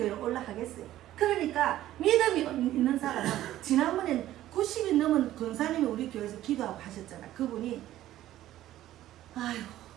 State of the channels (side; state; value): left; quieter; 13.8 dB